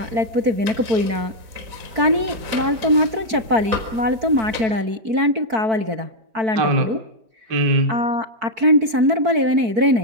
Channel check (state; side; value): late; left; 4.5 ms